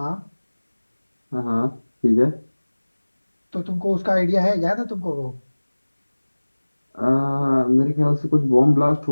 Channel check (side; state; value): both; inverted; correlation -1.00